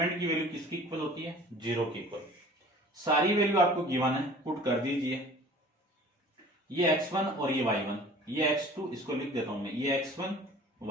की वैल्यू किसकी इक्वल होती है? 0 की इक्वल। सारी वैल्यू आपको गिवन है, पुट कर दीजिए। ये x1 और ये y1, ये x2, इसको लिख देता हूं मैं, ये x1,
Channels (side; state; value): both; normal; correlation 0.46